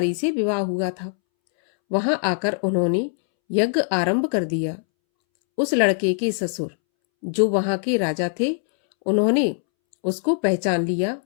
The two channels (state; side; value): silent; right; 64 dB below the other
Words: से विवाह हुआ था। वहां आकर उन्होंने यज्ञ आरंभ कर दिया। उस लड़के के ससुर जो वहां के राजा थे, उन्होंने उसको पहचान लिया